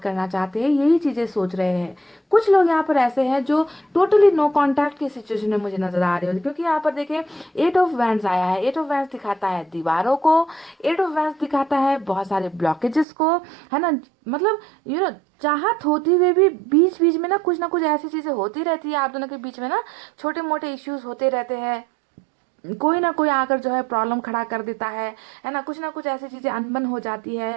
करना चाहते हैं, यही चीजें सोच रहे हैं। कुछ लोग यहाँ पर ऐसे हैं जो टोटली नो कांटेक्ट की सिचुएशन में मुझे नजर आ रहे हो, क्योंकि यहाँ पर देखें 8 ऑफ वैंड्स आया है। 8 ऑफ वैंड्स दिखाता है दीवारों को, 8 ऑफ वैंड्स दिखाता है बहुत सारे ब्लॉकेजेस को, है ना। मतलब चाहत होती हुए भी बीच बीच में ना कुछ ऐसी चीजें होती रहती है आप दोनों के बीच में ना, छोटे मोटे इश्यूज होते रहते हैं। कोई ना कोई आकर जो है प्रॉब्लम खड़ा कर देता है ना कुछ ऐसी चीजें अनबन हो जाती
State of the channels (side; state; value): left; drops out; at 13.1 s